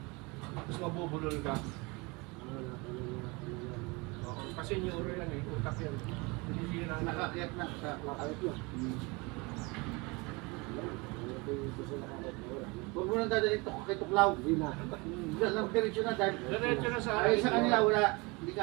Tapos mabubulol ka. Kasi neuro yan eh, utak yan. Hindi sila Nakakiyat na sa makakit yun. Huwag mo nang dadalhin kay Tuklaw. Hindi na. Lang diretso na dahil. Diretso na sa Ay, sa kanila wala. Hindi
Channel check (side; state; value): left; quieter; 26.6 dB